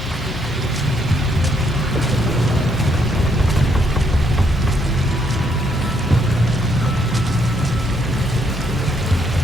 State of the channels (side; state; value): both; normal; correlation 0.72